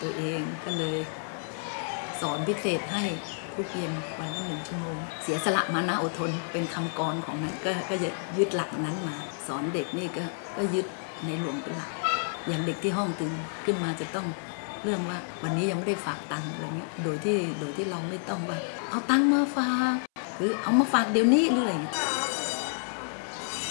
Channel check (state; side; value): silent; right; 58 dB below the other